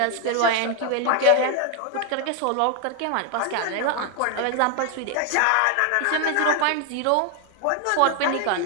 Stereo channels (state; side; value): different; both; correlation 0.00